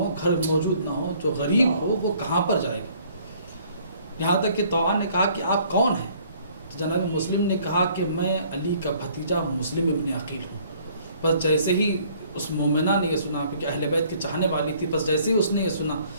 گھر موجود نہ ہو، جو غریب ہو، وہ کہاں پر جائے گا. یہاں تک کہ طوعان نے کہا کہ آپ کون ہیں؟ تو جناب مسلم نے کہا کہ میں علی کا بھتیجا مسلم ابن عقیل ہوں. بس جیسے ہی اس مومنہ نے یہ سنا کہ اہل بیت کے چاہنے والی تھی، بس جیسے ہی اس نے یہ سنا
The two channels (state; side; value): inverted; both; correlation -0.59